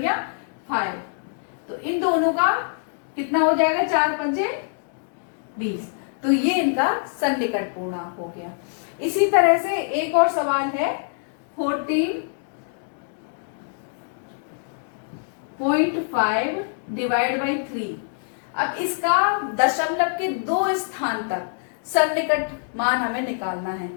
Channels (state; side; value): silent; right; digital silence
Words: 5। तो इन दोनों का कितना हो जाएगा, 4 पंजे 20। तो ये इनका सन्निकट पूर्णांक हो गया। इसी तरह से एक और सवाल है 14.5 डिवाइड बाई 3। अब इसका दशमलव के 2 स्थान तक सन्निकट मान हमें निकालना है।